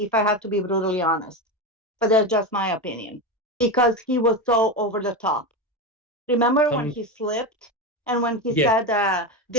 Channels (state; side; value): normal; both; correlation 0.17